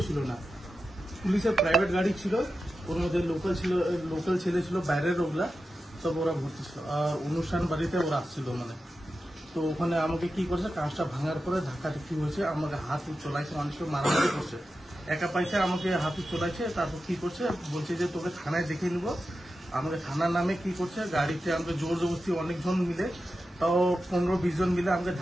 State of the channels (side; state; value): both; normal; correlation 0.91